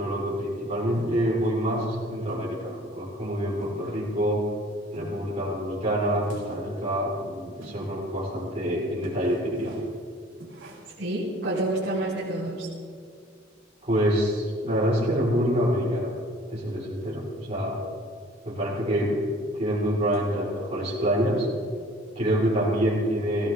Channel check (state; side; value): normal; both; correlation 0.51